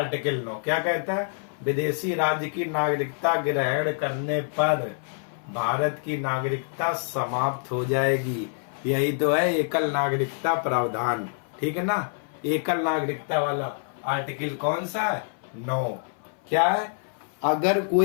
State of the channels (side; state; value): right; silent; 58 dB below the other